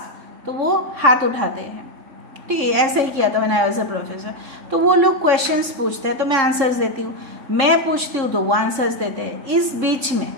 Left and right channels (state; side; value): late; left; 3.7 ms